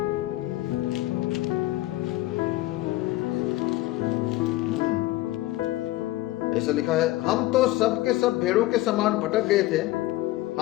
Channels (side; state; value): right; quieter; 17.4 dB